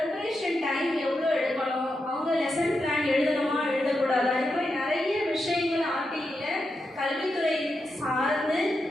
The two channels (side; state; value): both; normal; correlation 0.86